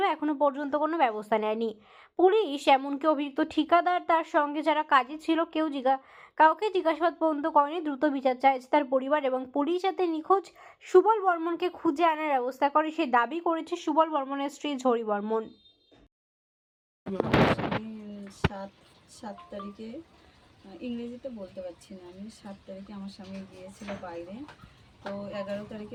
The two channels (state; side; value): identical; both; correlation 1.00